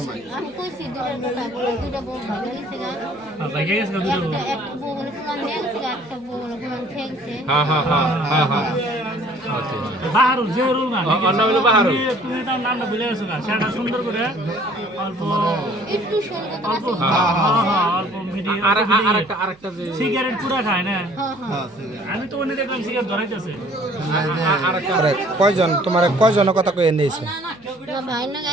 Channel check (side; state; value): right; noise; hum, 29 dB below the sound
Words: নাই আমি কইছি দুইটা বউ ভালো হইছে গা ভাই গেছে দুইটা বউ একটা বউ বলে কোন নেছে একটা বউ বলে কোন ঠেকছে হ্যাঁ হ্যাঁ হ্যাঁ হ্যাঁ হ্যাঁ আচ্ছা বাহারুল যে রুল না অন্য হলো বাহারুল তুমি তার নামটা ভুলে গেছো না সেটা সুন্দর করে অল্প একটু সুন্দর অল্প হ্যাঁ অল্প মিডিয়াম আরেকটা যে সিগারেট পুরা খায় না হ্যাঁ আমি তো অন্য দেখলাম সিগারেট ধরাইতেছে আরে কয়জন তোমার কয়জনের কথা কয়ে নিয়েছে না ভাই না